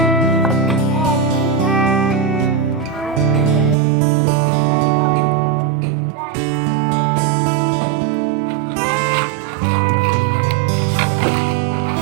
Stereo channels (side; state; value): left; drops out; at 3.8 s